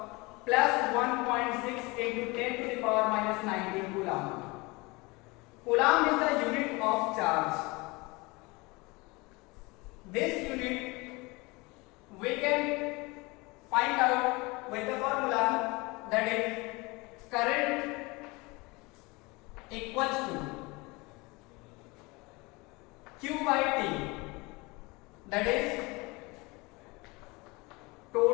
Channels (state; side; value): quieter; right; 24.9 dB